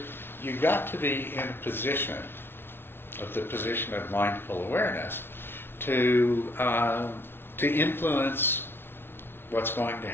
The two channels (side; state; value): right; late; 0.11 ms